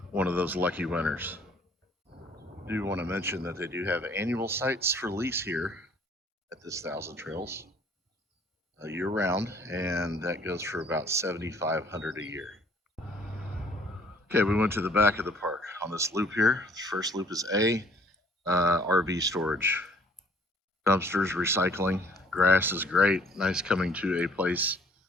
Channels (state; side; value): normal; both; correlation 0.57